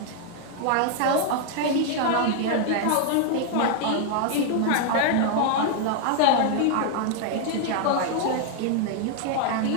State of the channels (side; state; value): both; different; correlation 0.00